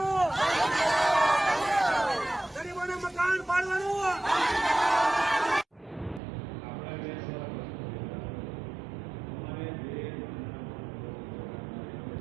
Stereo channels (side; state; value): left; drops out; at 6.2 s